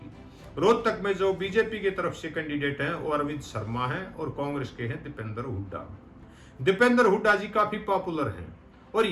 रोहतक में जो बीजेपी की तरफ से कैंडिडेट हैं वो अरविंद शर्मा हैं और कांग्रेस के हैं दीपेंद्र हुड्डा। दीपेंद्र हुड्डा जी काफी पॉपुलर हैं और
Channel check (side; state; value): both; identical; correlation 1.00